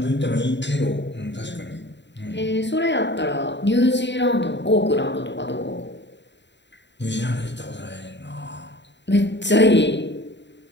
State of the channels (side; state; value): right; late; 0.52 ms